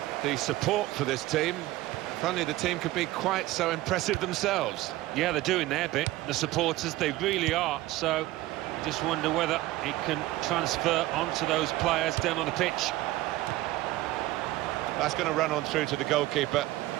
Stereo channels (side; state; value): left; quieter; 17.1 dB